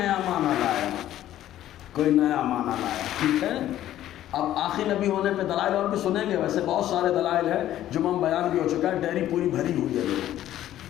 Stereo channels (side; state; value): right; quieter; 12.8 dB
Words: معنی لایا، کوئی نیا معنی لایا، ٹھیک ہے، اب آخری نبی ہونے پہ دلائل اور بھی سنیں گے. ویسے بہت سارے دلائل ہیں، جمعہ بیان بھی ہو چکا ہے، ڈیری پوری بھری ہوئی ہے.